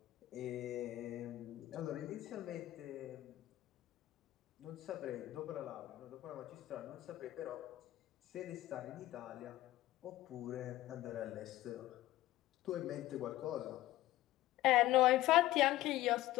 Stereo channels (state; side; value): quieter; right; 15.8 dB